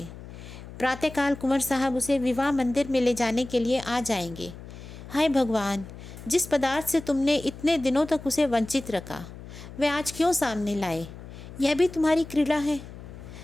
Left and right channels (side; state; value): left; noise; hum, 14 dB below the sound